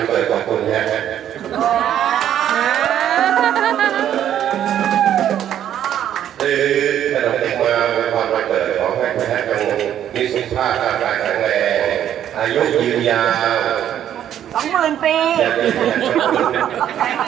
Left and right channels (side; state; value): left; quieter; 10.5 dB